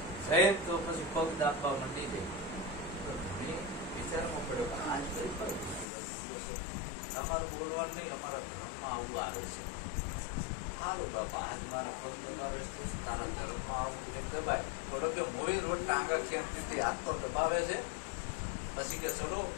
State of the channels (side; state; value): right; drops out; at 5.9 s